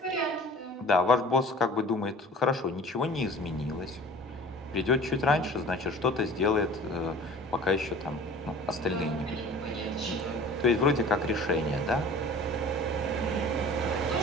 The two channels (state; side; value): normal; both; correlation 0.44